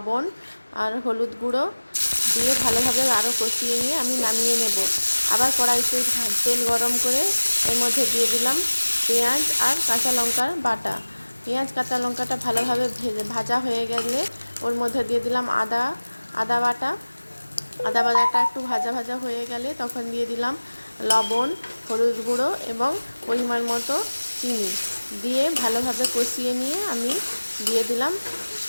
আর হলুদ গুঁড়ো, দিয়ে ভালোভাবে আরও কষিয়ে নিয়ে আমি নামিয়ে নেব। আবার কড়াইতে তেল গরম করে এর মধ্যে দিয়ে দিলাম পেঁয়াজ আর কাঁচা লঙ্কার বাটা। পেঁয়াজ কাঁচা লঙ্কাটা ভালোভাবে ভাজা হয়ে গেলে ওর মধ্যে দিয়ে দিলাম আদা বাটা। আদা বাটাটা একটু ভাজা ভাজা হয়ে গেলে তখন দিয়ে দিলাম লবণ, হলুদ গুঁড়ো এবং পরিমাণ মতো চিনি দিয়ে ভালোভাবে কষিয়ে নিয়ে আমি দিয়ে দিলাম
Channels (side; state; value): both; inverted; correlation -1.00